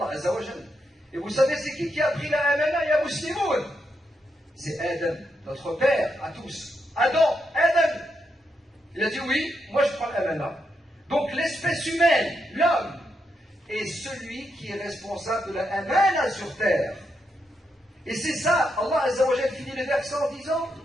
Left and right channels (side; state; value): both; normal; correlation 0.82